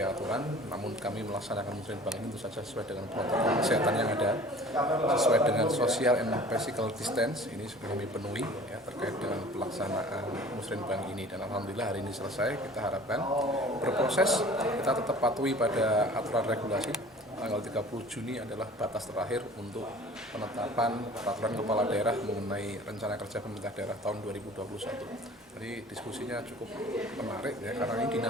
aturan, namun kami melaksanakan musrenbang ini tentu saja sesuai dengan protokol kesehatan yang ada, sesuai dengan social and physical distance. Ini sudah kami penuhi ya, terkait dengan pelaksanaan musrenbang ini, dan alhamdulillah hari ini selesai. Kita harapkan berproses, kita tetap patuhi pada aturan regulasi. Tanggal 30 Juni adalah batas terakhir untuk penetapan peraturan kepala daerah mengenai rencana kerja pemerintah daerah tahun 2021. Jadi diskusinya cukup menarik ya, karena ini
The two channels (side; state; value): both; normal; correlation 0.46